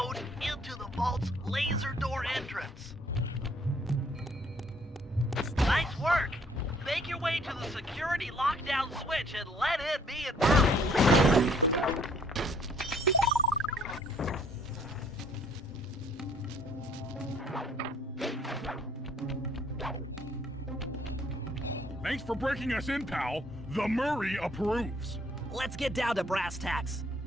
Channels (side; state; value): both; normal; correlation 0.62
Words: into the vault's laser door entrance. Nice work. Make your way to the security lockdown switch and let in me and Murray. Thanks for breaking us in, pal. The Murray approves. Let's get down to brass tacks.